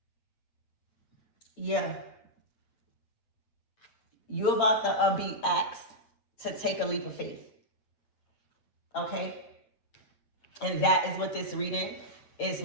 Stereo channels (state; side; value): late; right; 8.8 ms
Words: Yeah. You're about to be asked to take a leap of faith. Okay? And that is what this reading is